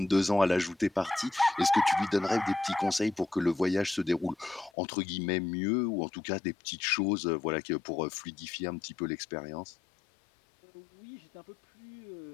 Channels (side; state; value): right; drops out; at 4.7 s